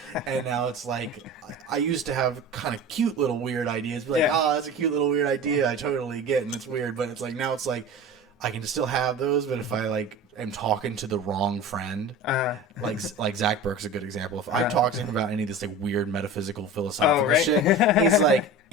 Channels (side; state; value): both; normal; correlation 0.34